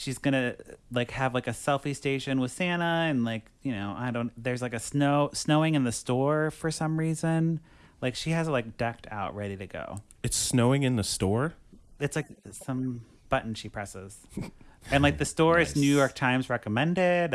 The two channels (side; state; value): both; identical; correlation 1.00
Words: gonna have a selfie station with Santa and there's snowing in the store for some reason. Like she has it decked out, ready to go. It's snowing in the store? It's like some button she presses. And the store is New York Times recommended